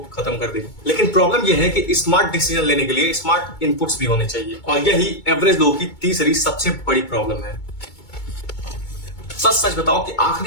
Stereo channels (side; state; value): right; late; 2.2 ms